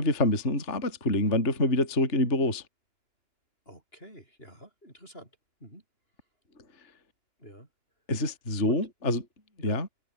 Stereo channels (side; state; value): right; late; 3.3 ms